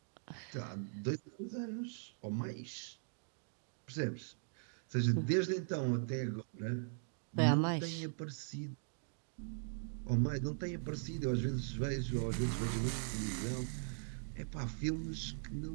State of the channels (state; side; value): silent; left; digital silence